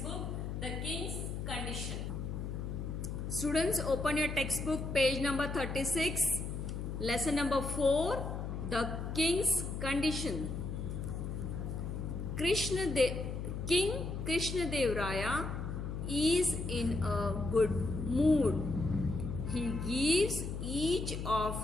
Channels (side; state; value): left; noise; hum, 4 dB below the sound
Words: The King's Condition. Students, open your textbook, page number 36, lesson number 4, The King's Condition. King Krishna Dev Raya is in a good mood. He gives each